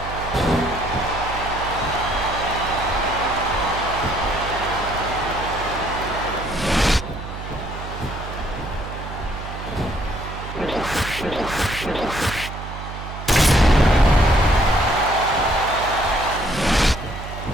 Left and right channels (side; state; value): right; noise; hum, 9 dB below the sound